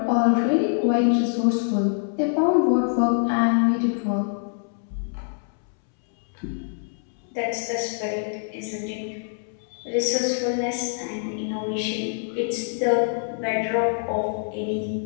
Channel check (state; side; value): silent; right; 62 dB below the other